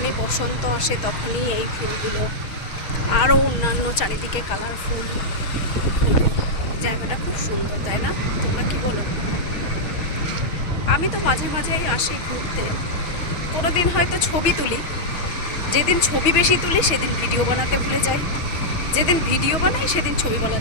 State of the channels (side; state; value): right; late; 6.3 ms